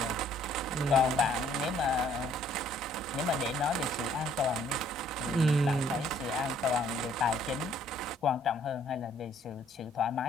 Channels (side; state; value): both; normal; correlation 0.62